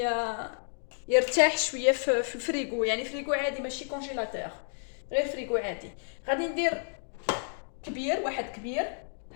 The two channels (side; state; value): right; silent; digital silence